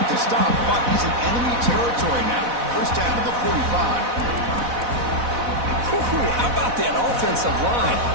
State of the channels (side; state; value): left; late; 4.1 ms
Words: the stop, but he's in enemy territory now. First down to the 45. How about that offensive line?